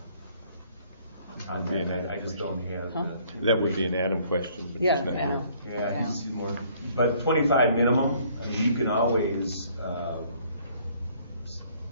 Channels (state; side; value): inverted; both; correlation -0.61